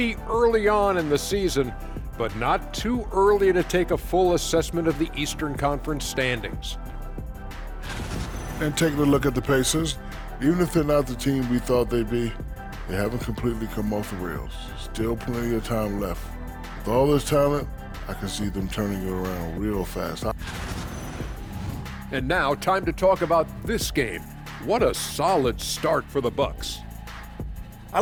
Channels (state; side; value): identical; both; correlation 1.00